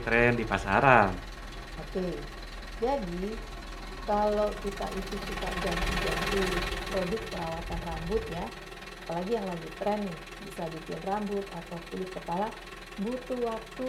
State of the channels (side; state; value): both; identical; correlation 1.00